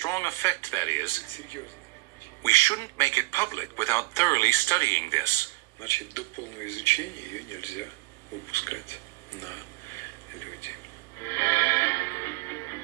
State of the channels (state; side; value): quieter; left; 22.4 dB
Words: effect, that is, серьезно. we shouldn't make it public without thoroughly studying this. Значит, до полного изучения ее нельзя выпускать на люди.